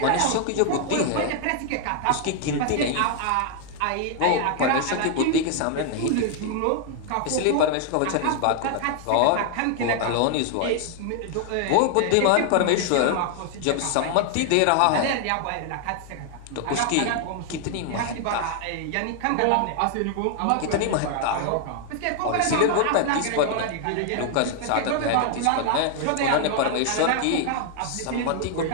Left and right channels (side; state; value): both; different; correlation 0.00